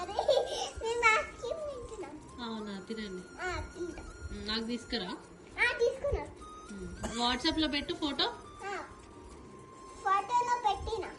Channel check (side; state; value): both; identical; correlation 1.00